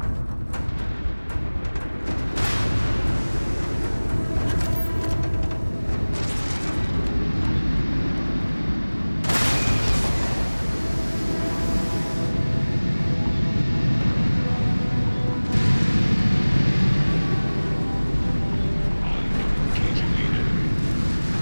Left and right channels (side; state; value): both; inverted; correlation -1.00